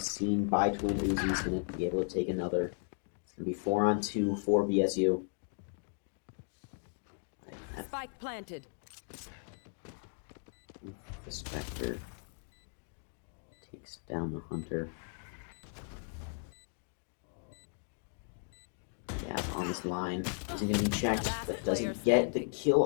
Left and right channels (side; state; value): right; silent; 54 dB below the other